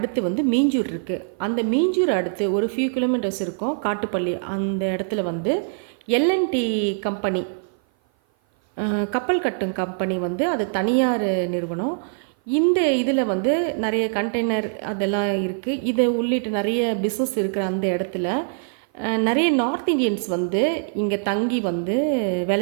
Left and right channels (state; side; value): silent; left; 56 dB below the other